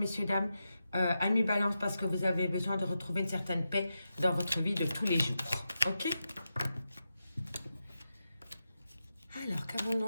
dames, amis balance, parce que vous avez besoin de retrouver une certaine paix dans votre vie de tous les jours. Ok? Alors, qu'avons-nous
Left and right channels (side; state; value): both; inverted; correlation -0.88